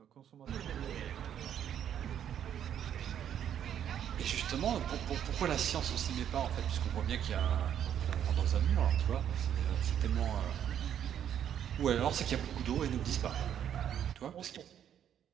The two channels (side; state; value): left; quieter; 9.6 dB